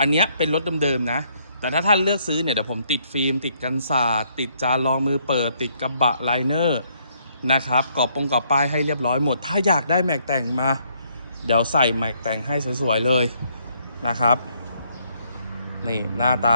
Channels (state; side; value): inverted; both; correlation -0.70